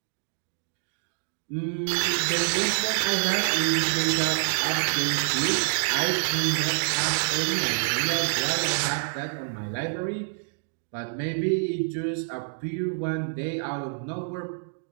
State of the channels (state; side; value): silent; left; digital silence